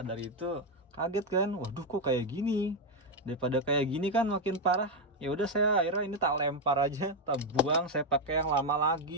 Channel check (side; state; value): both; normal; correlation 0.04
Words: itu kaget kan, waduh kok kayak gini. Daripada kayak gini kan makin parah. Ya udah, saya akhirnya ini tak lempar aja, tak buang, saya pakai yang lama